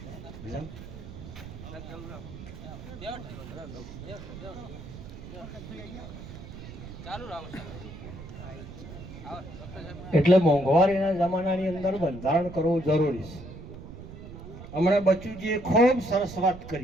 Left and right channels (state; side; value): noise; right; rumble, 13 dB below the sound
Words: એટલે મોંઘવારીના જમાનાની અંદર બંધારણ કરવું જરૂરી છે। હમણાં બચુજીએ ખૂબ સરસ વાત